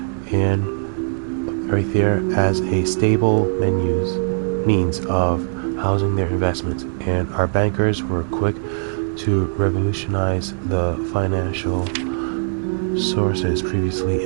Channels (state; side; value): silent; left; digital silence